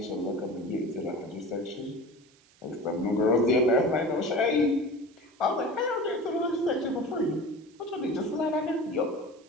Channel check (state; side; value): noise; right; hiss, 30 dB below the sound